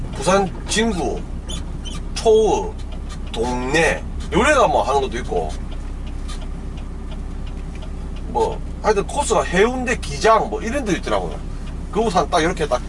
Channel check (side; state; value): both; identical; correlation 1.00